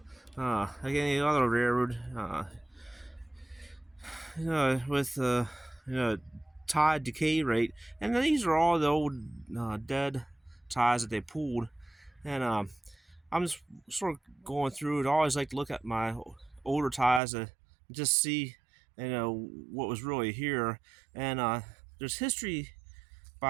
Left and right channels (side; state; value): left; drops out; at 17.2 s